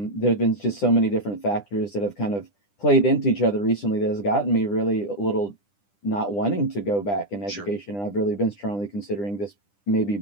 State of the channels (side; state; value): right; late; 10 ms